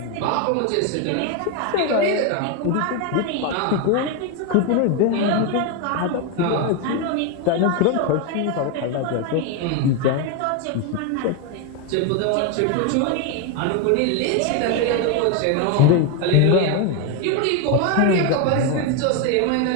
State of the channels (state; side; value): different; both; correlation 0.01